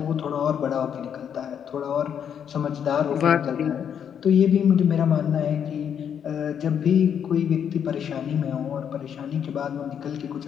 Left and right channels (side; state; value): right; quieter; 8.3 dB